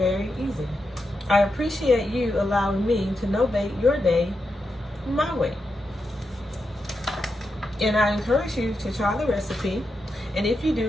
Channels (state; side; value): normal; both; correlation 0.86